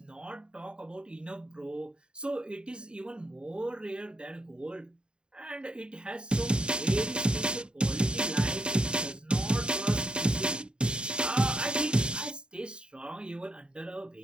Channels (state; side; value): late; left; 0.050 ms